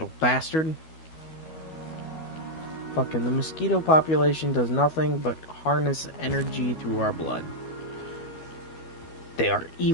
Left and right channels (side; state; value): right; late; 12 ms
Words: bastard. Fucking the mosquito population does nothing but harness energy through our blood. They are